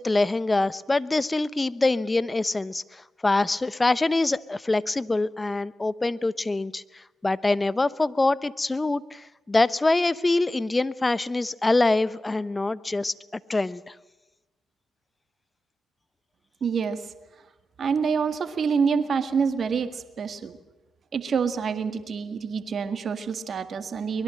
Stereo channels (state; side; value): normal; both; correlation 0.92